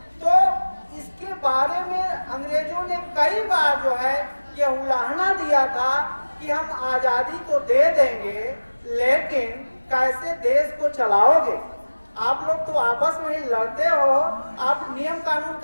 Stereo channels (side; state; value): both; inverted; correlation -1.00